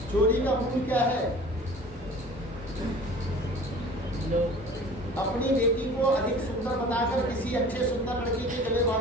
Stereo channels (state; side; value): normal; both; correlation 0.44